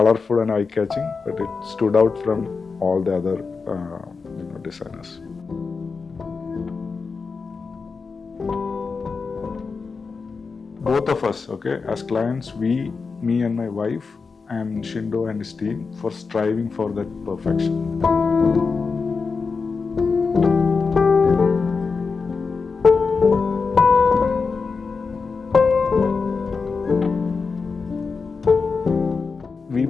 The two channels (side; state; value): right; quieter; 4.8 dB